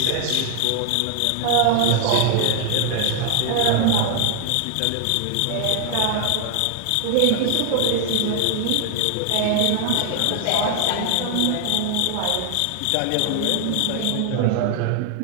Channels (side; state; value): both; different; correlation 0.00